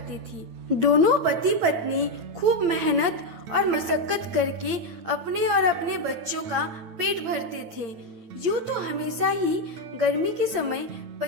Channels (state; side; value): late; left; 8.7 ms